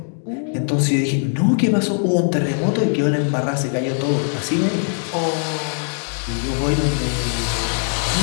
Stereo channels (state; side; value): silent; right; 63 dB below the other